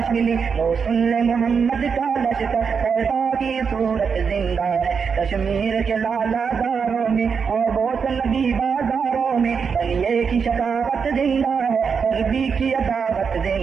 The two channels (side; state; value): left; quieter; 6.0 dB